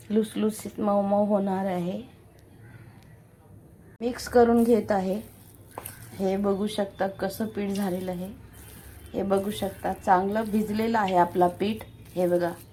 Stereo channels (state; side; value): identical; both; correlation 1.00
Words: लुसलुसीत मऊ मऊ होणार आहे. मिक्स करून घेत आहे. हे बघू शकता कसं पीठ झालेलं आहे. हे बघू शकता, चांगलं भिजलेलं आहे आपला पीठ. हे बघा,